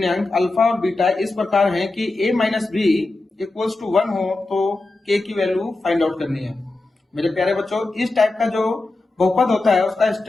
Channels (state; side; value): quieter; right; 3.0 dB